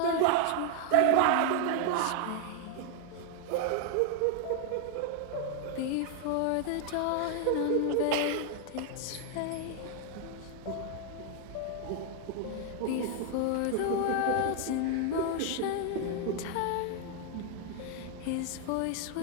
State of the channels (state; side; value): different; both; correlation 0.00